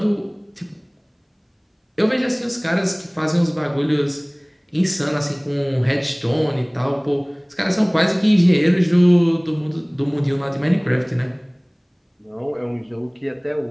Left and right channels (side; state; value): both; identical; correlation 1.00